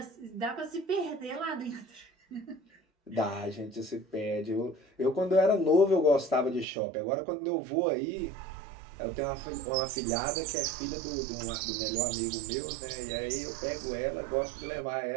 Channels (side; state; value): left; drops out; at 6.7 s